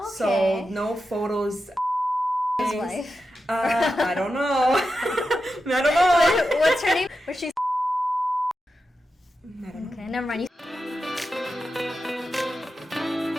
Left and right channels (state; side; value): normal; both; correlation 0.90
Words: So no photos. His wife. I don't know. I don't know. What's her name? Was she? I don't know. Okay, never mind.